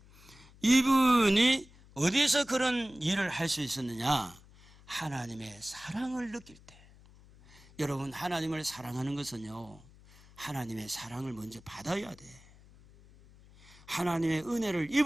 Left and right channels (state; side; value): noise; left; hum, 24 dB below the sound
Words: 이분이 어디서 그런 일을 할 수 있었느냐? 하나님의 사랑을 느낄 때. 여러분, 하나님을 사랑하는 것은요, 하나님의 사랑을 먼저 받아야 돼. 하나님의 은혜를